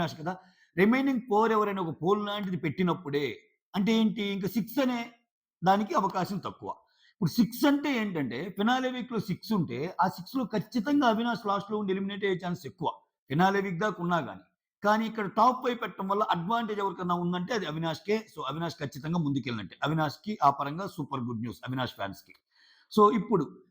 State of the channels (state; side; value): identical; both; correlation 1.00